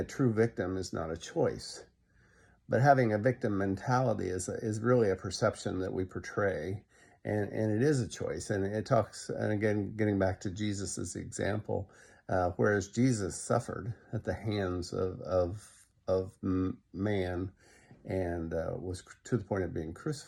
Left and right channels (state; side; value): identical; both; correlation 1.00